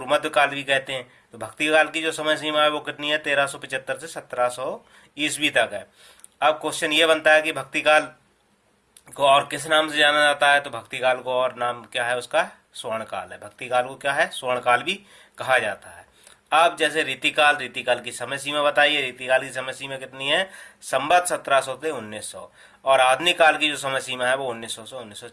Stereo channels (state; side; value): identical; both; correlation 1.00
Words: मध्य काल भी कहते हैं। तो भक्ति काल की जो समय सीमा है वो कितनी है, 1375 से 1700 ईस्वी तक है। अब क्वेश्चन ये बनता है कि भक्ति काल को और किस नाम से जाना जाता है। तो भक्ति काल को और नाम क्या है उसका, स्वर्ण काल है। भक्ति काल को क्या है, स्वर्ण काल भी कहा जाता है। अब जैसे रीतिकाल, रीतिकाल की समय सीमा बताइए। रीतिकाल की समय सीमा कितनी है, संवत 1700 से 1900। और आधुनिक काल की जो समय सीमा है वो 1900 से